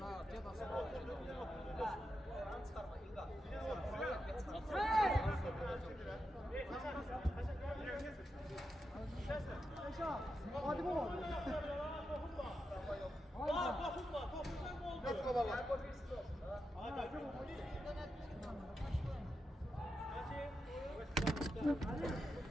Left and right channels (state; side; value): normal; both; correlation 0.87